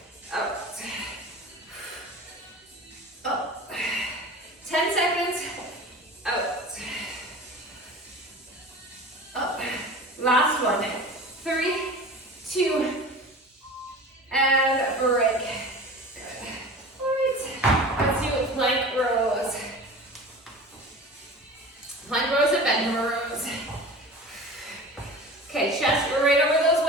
Out. Up. 10 seconds. Out. Up. Last one. 3, 2, and break. Good. All right. Let's do plank rows. Plank rows and bend rows. Okay, chest right over those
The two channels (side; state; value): both; normal; correlation 0.37